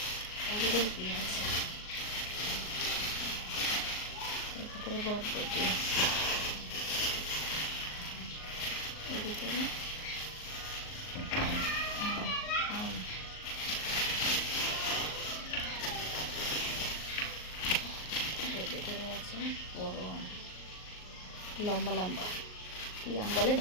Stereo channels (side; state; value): right; late; 38 ms